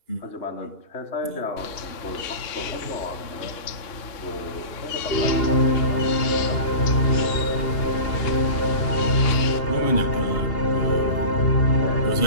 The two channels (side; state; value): right; late; 2.9 ms